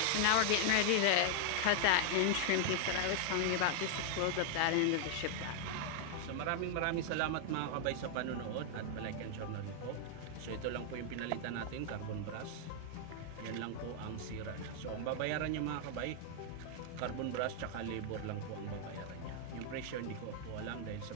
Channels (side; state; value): both; different; correlation -0.01